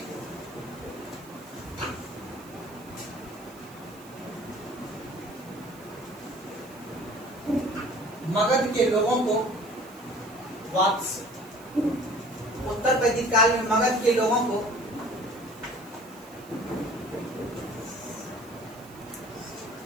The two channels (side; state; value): right; noise; hiss, 23 dB below the sound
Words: मगध के लोगों को वात्स्य, उत्तर वैदिक काल में मगध के लोगों को